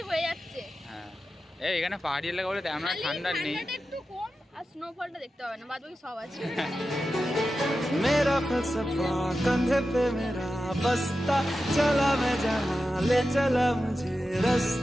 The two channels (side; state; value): both; normal; correlation 0.92